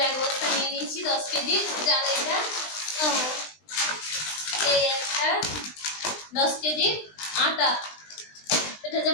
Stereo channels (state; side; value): late; right; 20 ms